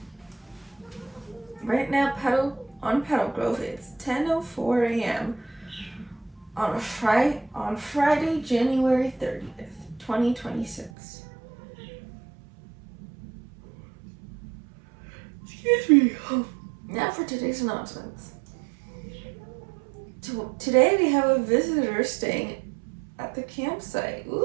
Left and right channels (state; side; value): drops out; left; at 10.9 s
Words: Right now, on Petalgrove, it's 10:04 a.m. on Friday, January 30th, 2026. Excuse me. Now for today's announcements. Today we have a visitor staying at the campsite.